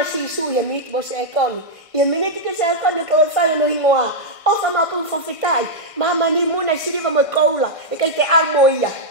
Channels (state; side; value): late; right; 1.5 ms